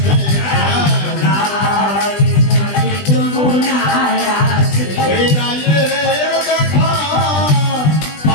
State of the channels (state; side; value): late; right; 20 ms